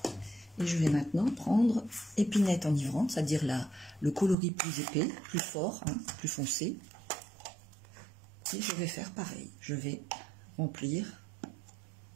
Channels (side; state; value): left; drops out; at 4.4 s